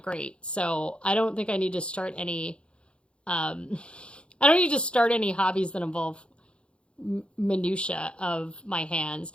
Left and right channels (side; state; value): right; late; 0.057 ms